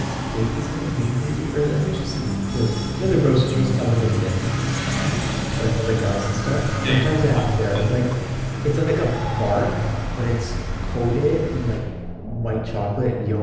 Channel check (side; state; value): both; identical; correlation 1.00